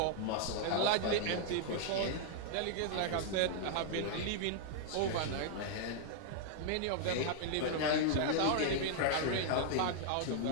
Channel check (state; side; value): different; both; correlation -0.01